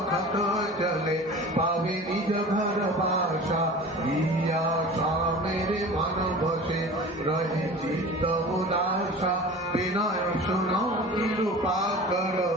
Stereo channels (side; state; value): both; normal; correlation 0.38